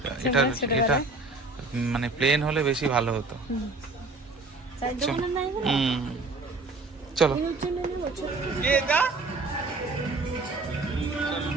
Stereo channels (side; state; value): left; quieter; 3.4 dB